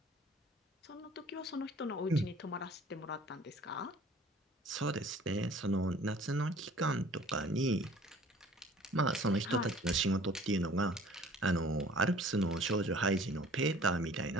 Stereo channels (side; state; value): both; normal; correlation 0.51